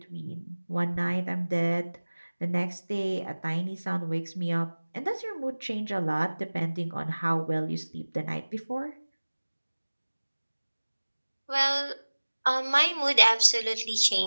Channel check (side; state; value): both; inverted; correlation -1.00